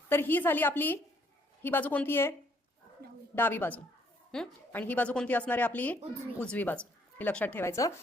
तर ही झाली आपली, ही बाजू कोणती आहे? डावी बाजू. आणि ही बाजू कोणती असणार आहे? आपली उजवी बाजू. हे लक्षात ठेवायचं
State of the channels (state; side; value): normal; both; correlation 0.66